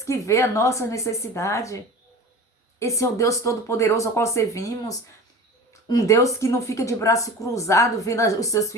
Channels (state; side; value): normal; both; correlation 0.35